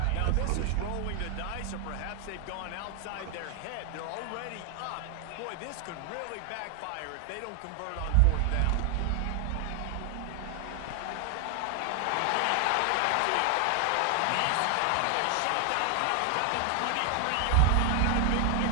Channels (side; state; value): both; different; correlation 0.00